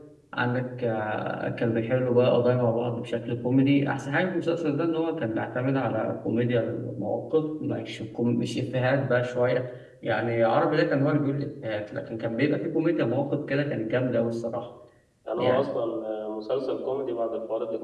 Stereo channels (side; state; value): both; identical; correlation 1.00